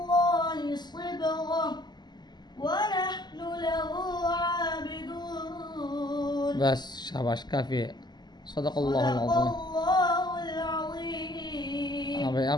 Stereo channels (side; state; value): right; late; 0.21 ms